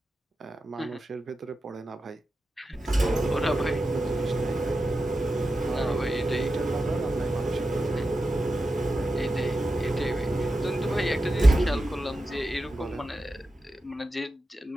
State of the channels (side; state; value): both; normal; correlation 0.91